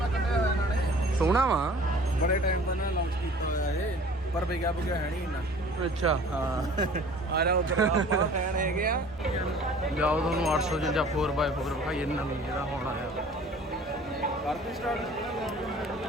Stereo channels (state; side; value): normal; both; correlation 0.48